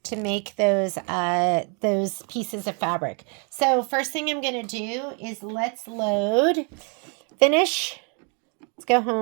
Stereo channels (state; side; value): quieter; left; 37.4 dB